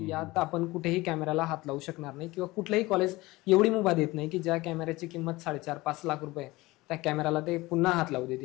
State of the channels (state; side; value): quieter; right; 20.4 dB